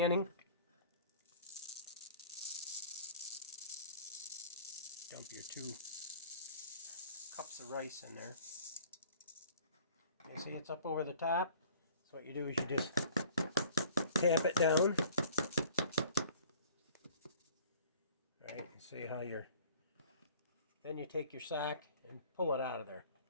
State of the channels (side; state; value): both; inverted; correlation -0.50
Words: Dump your 2 cups of rice in there. You see it's up over the top. So what you do is you just tap it down. All right, and see how you're. Then you take your sack and pull it out of there.